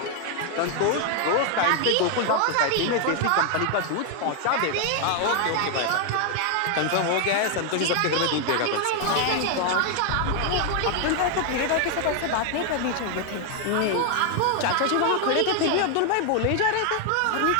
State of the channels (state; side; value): different; both; correlation 0.00